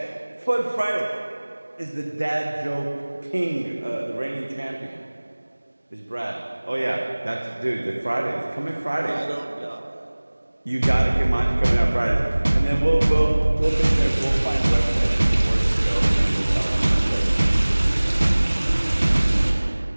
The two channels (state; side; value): inverted; both; correlation -1.00